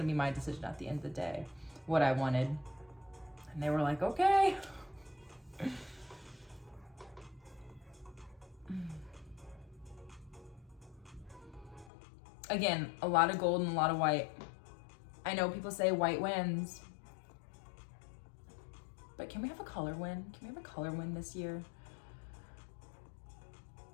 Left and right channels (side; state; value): right; drops out; at 11.9 s